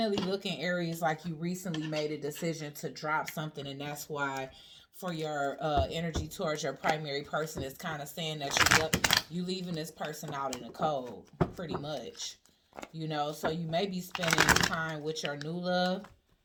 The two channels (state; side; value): identical; both; correlation 1.00